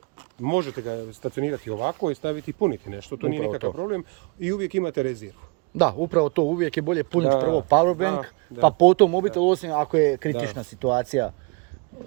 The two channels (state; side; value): quieter; left; 31.7 dB